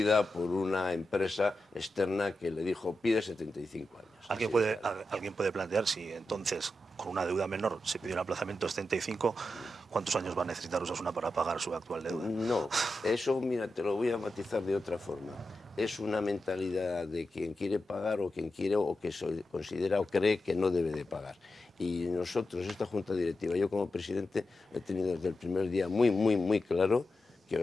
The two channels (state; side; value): normal; both; correlation 0.90